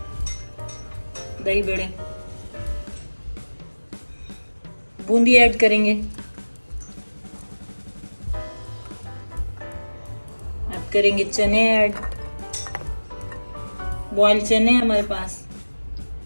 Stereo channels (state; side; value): inverted; both; correlation -1.00